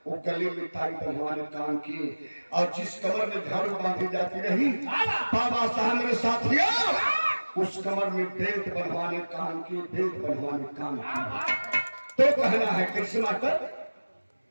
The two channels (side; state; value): both; inverted; correlation -1.00